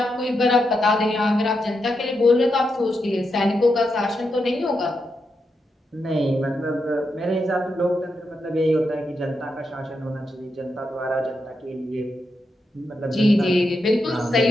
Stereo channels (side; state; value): both; normal; correlation 0.85